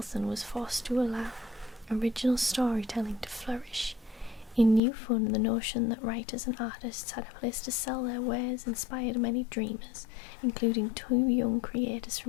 was forced to allow original storytelling to flourish. In New Fun, the notion that writers and artists had a place to sell their wares inspired many dreamers, including two young creators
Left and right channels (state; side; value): drops out; right; at 4.8 s